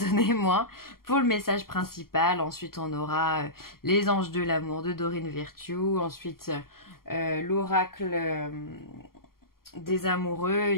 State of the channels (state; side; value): late; right; 0.93 ms